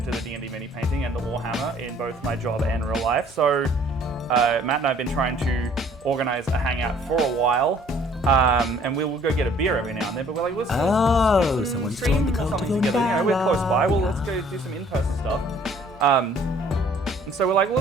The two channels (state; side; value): normal; both; correlation 0.57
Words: the D&D mini painting and the Warhammer in both my job and real life. So Matt and I have been trying to organize a hangout for a while. And we'll go get a beer every now and then, but we're like, let's do some stream or something together. You know, we're close by. Well, let's go do some in-person stuff. And so we're like,